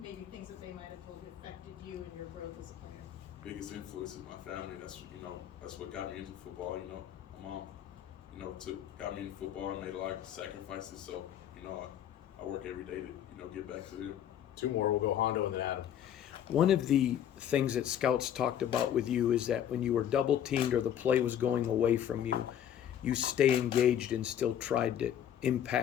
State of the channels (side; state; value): right; quieter; 10.1 dB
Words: things that they might have told you affected you and your growth as a player? Biggest influence is my family. That's what got me into football. My mom, got me into football and made a lot of sacrifices. So I work every day to get back to them. 2 more. We'll go Hondo and then Adam. One of the things that scouts talked about with you is that when you were double teamed or the play was going away from you, you stay engaged and still tried to